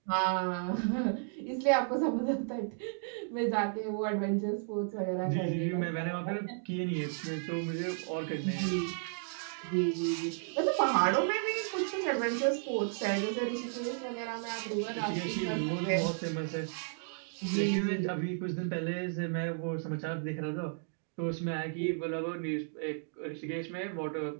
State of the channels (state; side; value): silent; left; digital silence